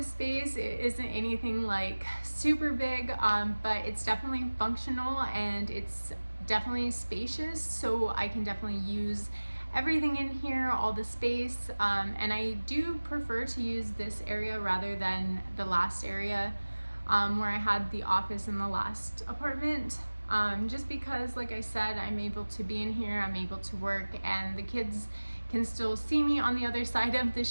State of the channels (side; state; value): both; inverted; correlation -1.00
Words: space. It isn't anything like super big, but it's definitely functional and it's definitely spacious, so I can definitely use everything in here, all the space, and I do prefer to use this area rather than the last area where I had the office in the last apartment, just because, like I said, I'm able to be in here, I'm able to work, and the kids can still see me on the other side of the